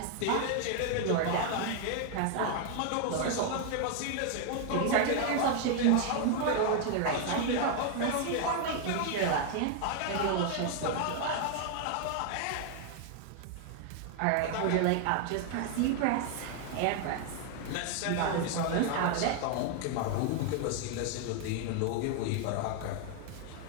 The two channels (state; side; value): different; both; correlation 0.00